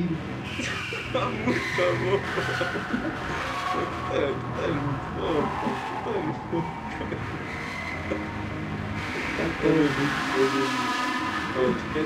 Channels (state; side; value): identical; both; correlation 1.00